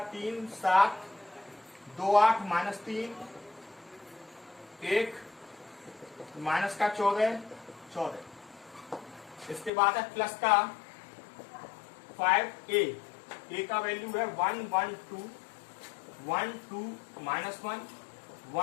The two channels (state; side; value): drops out; right; at 9.7 s